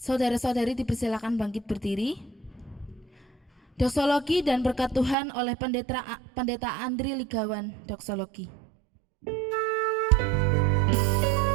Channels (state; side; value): drops out; left; at 5.2 s